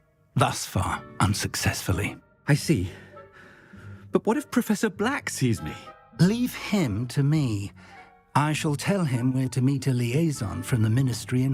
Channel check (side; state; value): both; identical; correlation 1.00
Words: Thus far, unsuccessfully. I see. But what if Professor Black sees me? Leave him to me. I shall tell him we're to meet a liaison from the ministry in